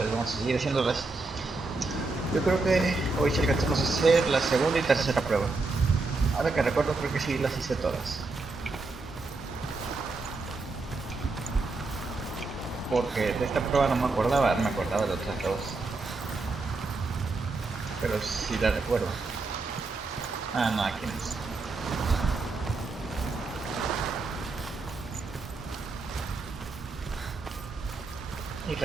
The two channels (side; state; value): left; quieter; 3.6 dB